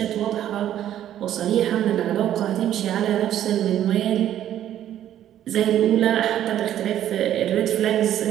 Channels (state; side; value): quieter; left; 11.4 dB